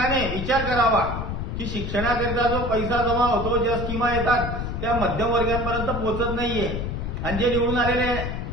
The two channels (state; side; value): noise; left; rumble, 4 dB below the sound